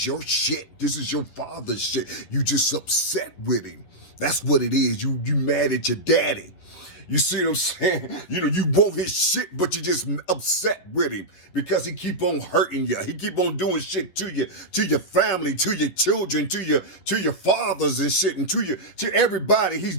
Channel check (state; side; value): late; right; 11 ms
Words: your shit. This is your father's shit. You just upset with him. That's what it is. You mad at your daddy. You see what I'm saying? You want his shit, but you just upset with him because he keep on hurting you. He keep on doing shit to you, to your family, to your children, to your fathers and shit, and to everybody. He's